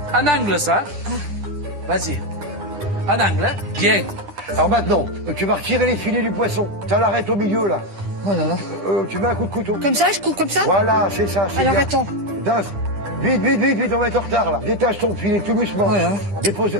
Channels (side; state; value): left; late; 10 ms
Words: en angle, ça. Vas-y. En angle, hein. Bien. Alors maintenant, tu vas retirer les filets du poisson. Tu l'arrêtes au milieu là. Oh là là. Tu mets un coup de couteau. Comme ça, je coupe comme ça? Voilà, c'est ça. c'est Alors, bien. attends. Putain, vite, vite, vite, vite, on va être en retard là. Détache ton filet tout doucement. Ouais, hein. Dépose